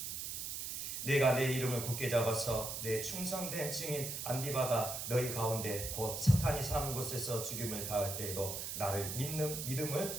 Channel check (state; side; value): noise; right; hiss, 5 dB below the sound